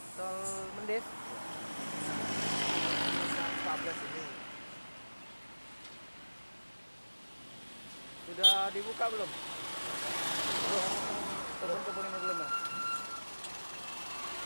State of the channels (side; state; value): both; inverted; correlation -1.00